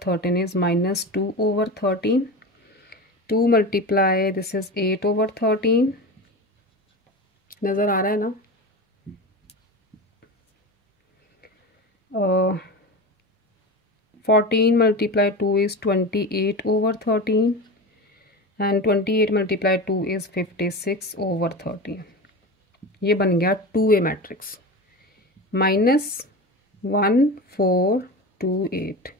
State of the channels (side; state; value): both; normal; correlation 0.26